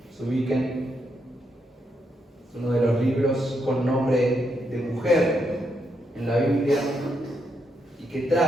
ubiquen, es uno de los libros con nombre de mujer en la Biblia y que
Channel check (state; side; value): normal; both; correlation 0.80